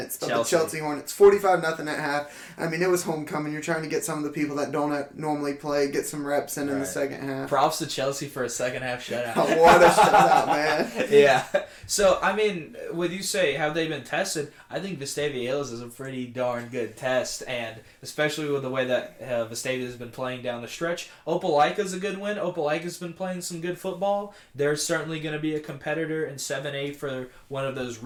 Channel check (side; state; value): both; identical; correlation 1.00